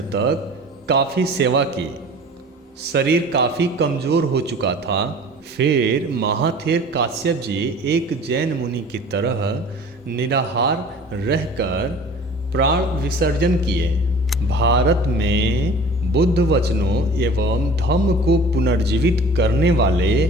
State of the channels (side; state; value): both; normal; correlation 0.44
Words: तक काफ़ी सेवा की। शरीर काफ़ी कमज़ोर हो चुका था। फिर महाथेर काश्यप जी एक जैन मुनि की तरह निराहार रहकर प्राण विसर्जन किए। भारत में बुद्ध वचनों एवं धम्म को पुनर्जीवित करने वाले